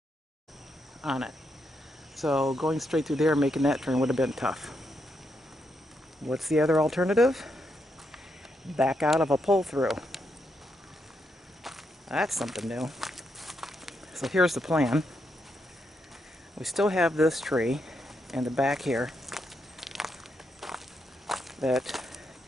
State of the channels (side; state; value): both; normal; correlation 0.81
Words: on it. So going straight through there and making that turn would have been tough. What's the other alternative? Back out of a pull-through. That's something new. So here's the plan. We still have this tree in the back here that